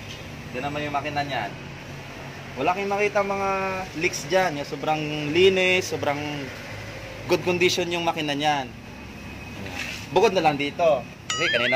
Ito naman yung makina niyan. Wala kayong makita mga leaks dyan. Yung sobrang linis, sobrang good condition yung makina niyan. Bukod na lang dito. Kasi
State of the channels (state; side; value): identical; both; correlation 1.00